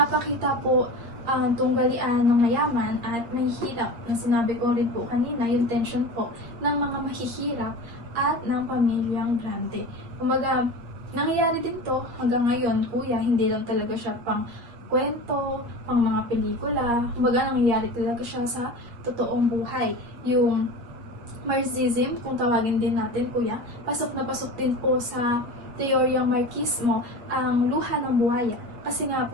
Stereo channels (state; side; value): late; left; 8.5 ms